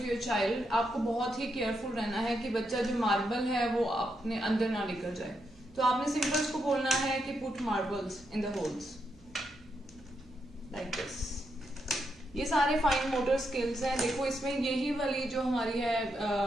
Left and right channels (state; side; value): noise; right; hum, 27 dB below the sound